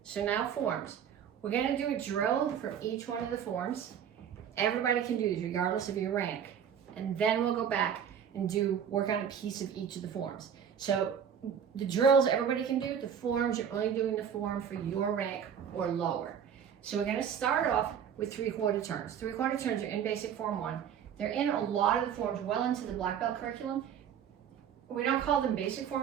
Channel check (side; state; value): left; quieter; 8.3 dB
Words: so now forms. We're going to do a drill from each one of the forms. Everybody can do this regardless of your rank. And then we'll go back and work on a piece of each of the forms. So the drills everybody can do, the forms, you're only doing the form for your rank or lower. So we're going to start off with 3/4 turns. 3/4 turns are in basic form 1. They're in a lot of the forms well into the black belt curriculum. We don't call them basic